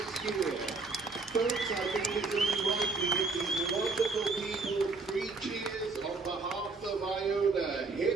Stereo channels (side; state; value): left; quieter; 3.9 dB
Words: year. Folks, I think it's only right we give these wonderful people 3 cheers on behalf of Iona.